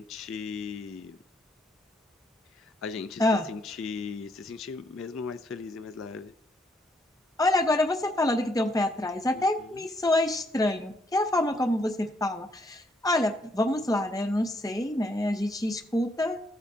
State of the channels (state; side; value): normal; both; correlation 0.72